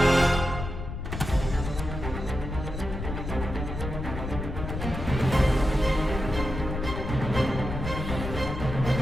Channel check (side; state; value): left; noise; rumble, 6 dB below the sound